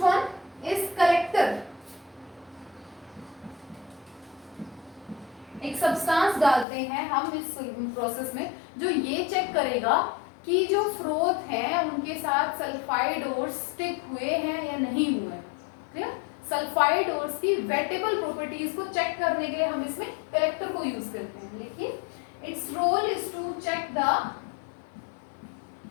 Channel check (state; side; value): drops out; right; at 6.7 s